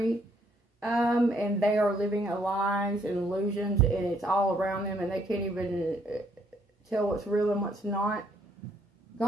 and they are living lies and illusions, and it's all around them, and they can't even tell what's real and what's not.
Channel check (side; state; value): both; normal; correlation 0.69